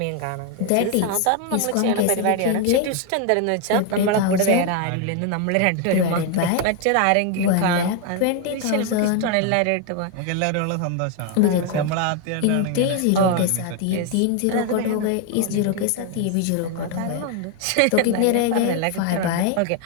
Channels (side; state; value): both; different; correlation 0.01